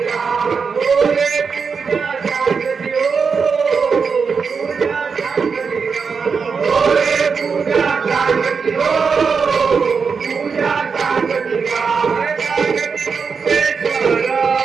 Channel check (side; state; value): left; quieter; 5.5 dB